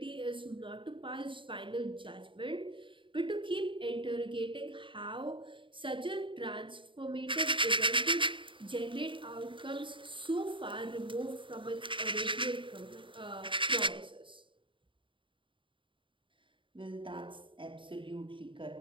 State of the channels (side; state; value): left; late; 0.24 ms